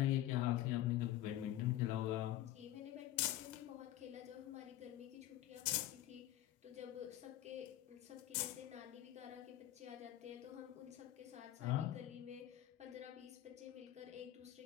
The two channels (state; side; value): quieter; right; 13.5 dB